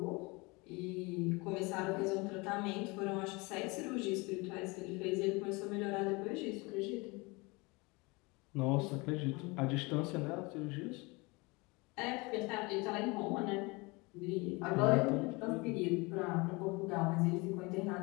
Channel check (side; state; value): right; quieter; 26.0 dB